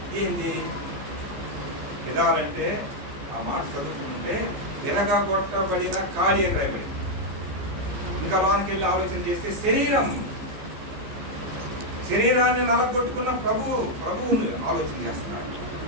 ఏంది గిదాలంటే? ఆ మాట చదువుకుంటే విరగొట్టబడిన ఖాళీ అని రాయబడింది. ఇంకా లోనికి వెళ్ళి ఆలోచన చేస్తే శరీరాన్ని నలగొట్టుకున్న ప్రభువుని ఆలోచన చేస్తున్నారు.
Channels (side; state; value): left; late; 14 ms